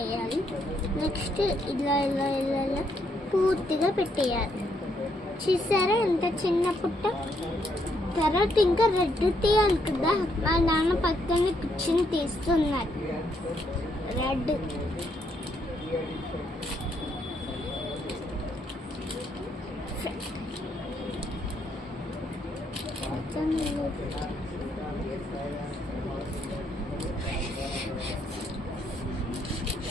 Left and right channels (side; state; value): both; normal; correlation 0.74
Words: నెక్స్ట్ ఇలా ఇలా ఇలా ఇలా పూర్తిగా పెట్టేయాలి. చూసారా ఎంత చిన్న పుట్ట. తర్వాత ఇంకా రెడ్ తీయాలి కదా, మా నాన్న పక్కన కూర్చొని తీస్తున్నారు రెడ్.